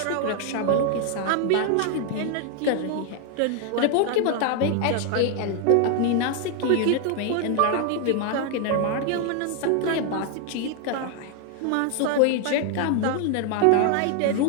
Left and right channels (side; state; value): both; different; correlation 0.00